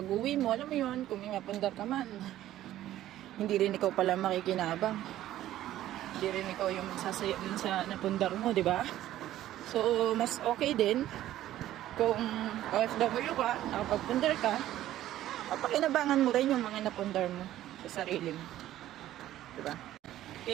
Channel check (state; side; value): quieter; left; 13.5 dB